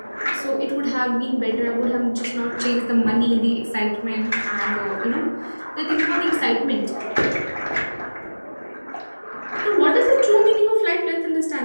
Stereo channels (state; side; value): inverted; both; correlation -1.00